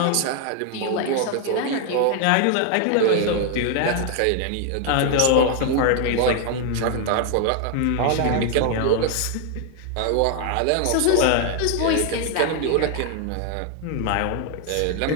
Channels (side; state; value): both; different; correlation 0.00